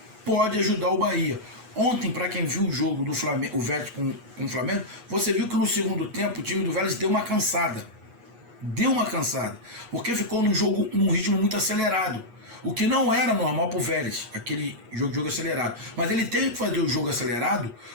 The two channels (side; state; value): left; late; 8.3 ms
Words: pode ajudar o Bahia. Ontem, para quem viu o jogo do Flamengo, o Vélez com o Flamengo, você viu que no segundo tempo o time do Vélez deu uma cansada, porque ficou num ritmo muito acelerado, o que não era normal para o Vélez, aquele jogo acelerado. Mas ele teve que fazer o jogo acelerado